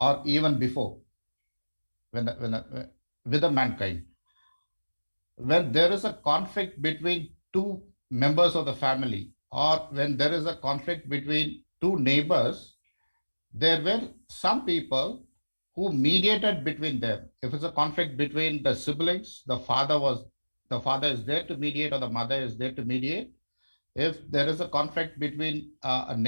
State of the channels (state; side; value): inverted; both; correlation -1.00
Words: even before, with the mankind. When there is a conflict between two members of the family, or when there is a conflict between two neighbors, there were some people who mediated between them. If it's a conflict between the siblings, the father is there to mediate, or the mother is there to mediate. If there is a conflict between